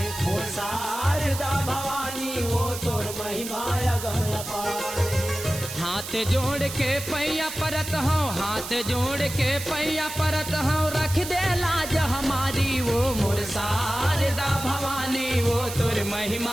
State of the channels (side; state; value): right; noise; hiss, 9 dB below the sound